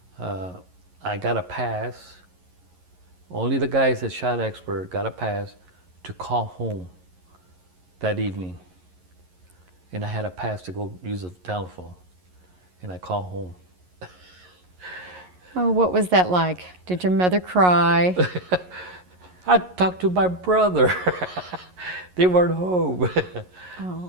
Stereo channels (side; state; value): left; late; 11 ms